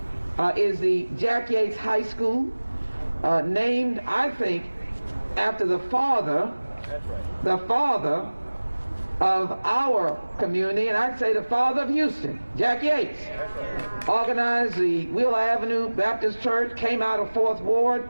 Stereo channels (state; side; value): inverted; both; correlation -1.00